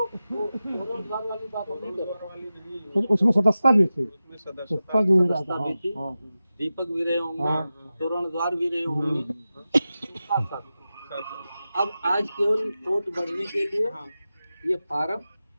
तोरणद्वार वाली बात हम नहीं कर रहे। तो उसमें सदस्यता भी थी, उसमें सदस्यता भी मिला सदस्यता था। भी थी, हाँ, दीपक भी रहे होंगे, हाँ। तोरणद्वार भी रहे होंगे। अब आज केवल वोट बढ़ने के लिए हाँ, ये फार्म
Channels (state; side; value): inverted; both; correlation -0.93